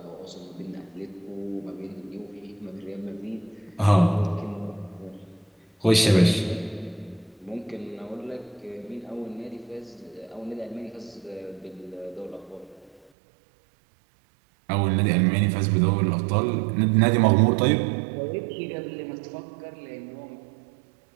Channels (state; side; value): drops out; left; at 13.0 s